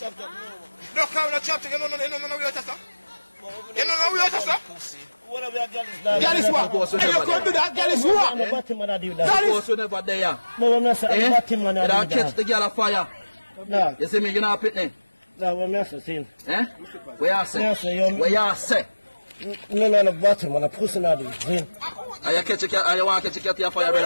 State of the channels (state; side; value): inverted; both; correlation -1.00